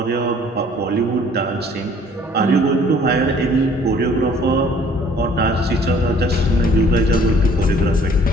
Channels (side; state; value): both; normal; correlation 0.56